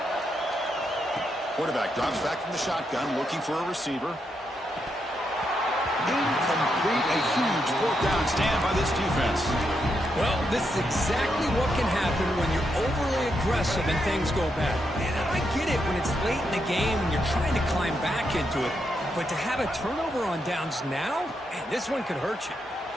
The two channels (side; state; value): both; normal; correlation 0.81